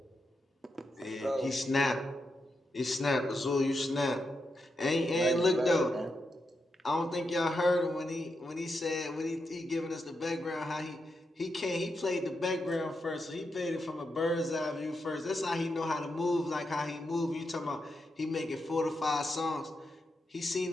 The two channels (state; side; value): normal; both; correlation 0.85